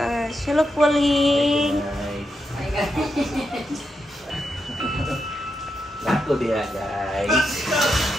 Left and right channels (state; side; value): normal; both; correlation 0.84